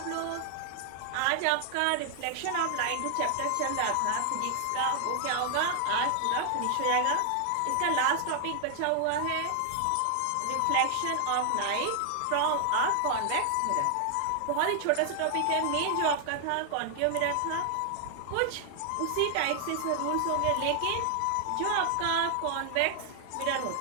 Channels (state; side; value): different; both; correlation 0.00